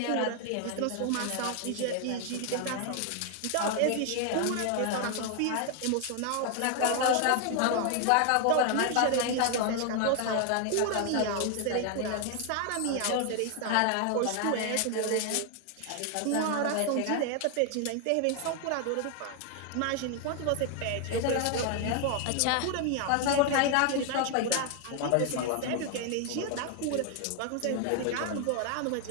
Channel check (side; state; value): both; different; correlation 0.00